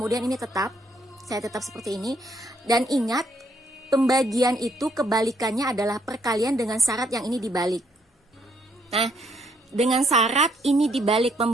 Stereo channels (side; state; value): both; normal; correlation 0.71